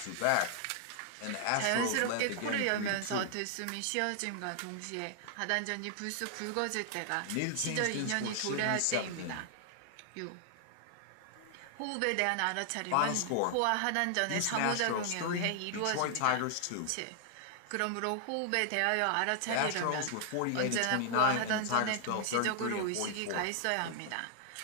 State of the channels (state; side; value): different; both; correlation 0.00